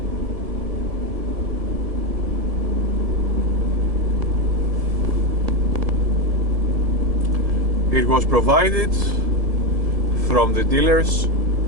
It was provided from the dealers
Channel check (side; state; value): left; late; 1.7 ms